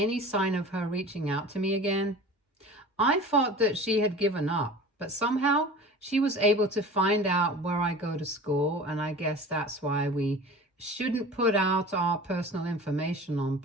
sign of her reaching out to me again, I thought that she had given up, but somehow she was able to find out where I go to school, and I guess that's why we shouldn't put out our personal information on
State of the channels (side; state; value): both; normal; correlation 0.38